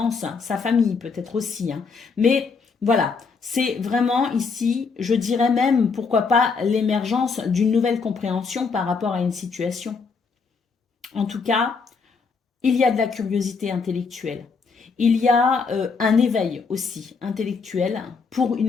sa famille peut-être aussi. Hein. Mais voilà, c'est vraiment ici, je dirais même, pourquoi pas, l'émergence d'une nouvelle compréhension par rapport à une situation. En tout cas, il y a de la curiosité intellectuelle. Il y a un éveil aussi intellectuel pour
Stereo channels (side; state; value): right; quieter; 5.0 dB